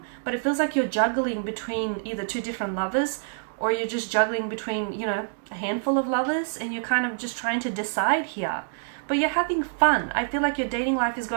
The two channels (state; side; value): silent; left; digital silence